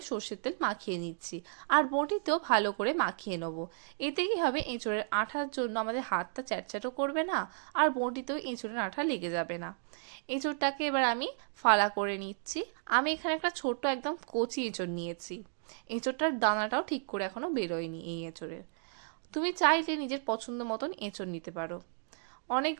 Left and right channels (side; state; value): left; silent; digital silence